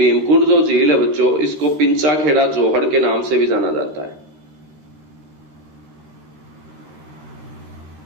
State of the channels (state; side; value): late; left; 13 ms